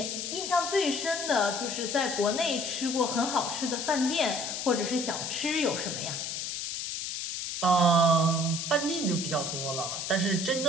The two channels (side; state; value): left; noise; hiss, 4 dB below the sound